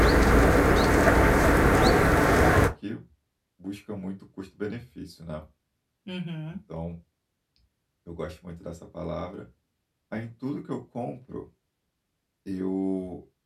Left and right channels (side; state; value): both; identical; correlation 1.00